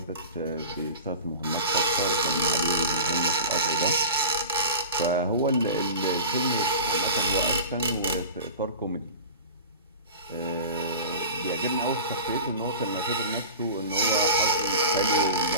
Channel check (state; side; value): inverted; both; correlation -0.34